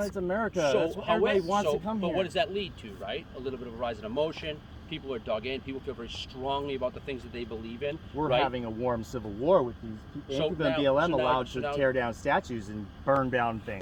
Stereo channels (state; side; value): identical; both; correlation 1.00